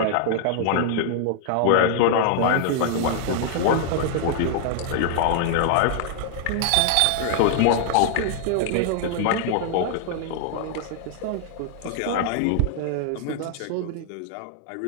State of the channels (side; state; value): both; different; correlation -0.01